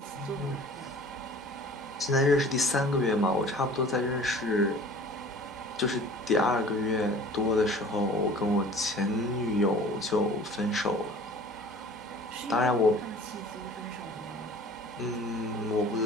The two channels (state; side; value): normal; both; correlation 0.45